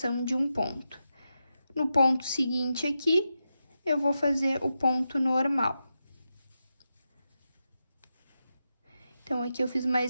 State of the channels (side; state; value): both; inverted; correlation -0.89